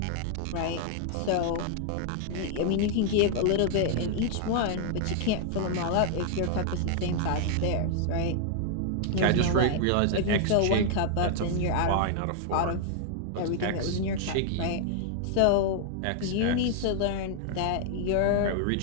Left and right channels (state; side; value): different; both; correlation 0.00